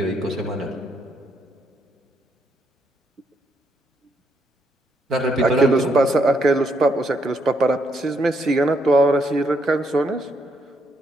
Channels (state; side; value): normal; both; correlation 0.76